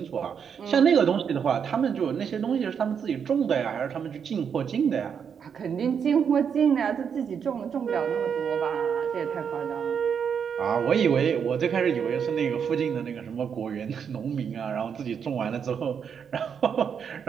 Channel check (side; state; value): left; quieter; 7.2 dB